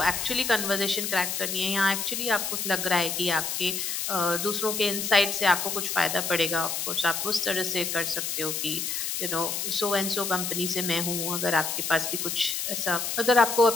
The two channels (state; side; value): noise; left; hiss, 2 dB below the sound